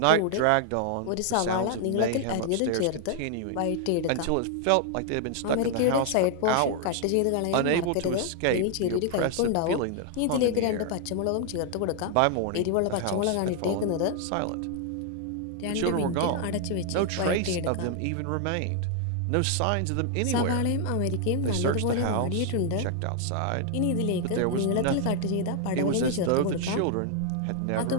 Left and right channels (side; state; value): both; different; correlation 0.00